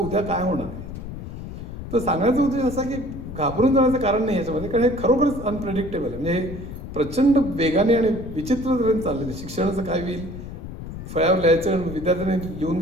काय होणार आहे. तर सांगण्याचा उद्देश असा की घाबरून जाण्याचं कारण नाही याच्यामध्ये, कारण हे खरोखरच अनप्रेडिक्टेबल आहे. म्हणजे हे प्रचंड वेगाने आणि विचित्र तऱ्हेने चाललेलं. शिक्षणाचं काय होईल, फळ्यावर लिहायचं आणि विद्यार्थ्यांनी लिहून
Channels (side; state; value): left; noise; rumble, 10 dB below the sound